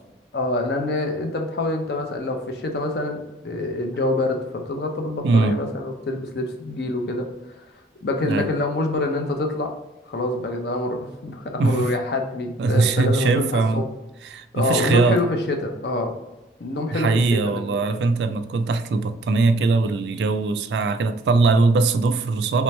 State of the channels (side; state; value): both; normal; correlation 0.55